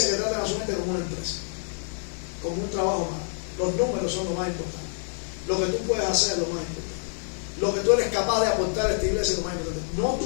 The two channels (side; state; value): right; silent; digital silence